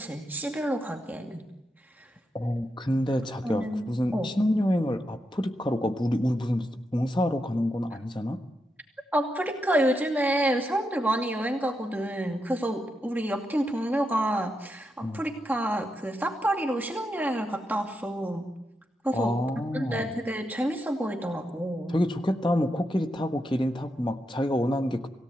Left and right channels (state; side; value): normal; both; correlation 0.85